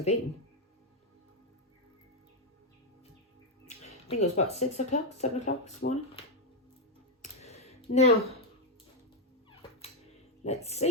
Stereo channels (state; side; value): normal; both; correlation 0.02